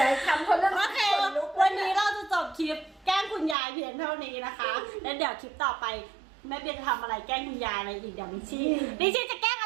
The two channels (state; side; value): drops out; left; at 3.6 s